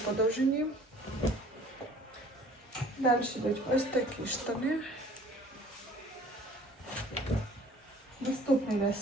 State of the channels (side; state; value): both; normal; correlation 0.51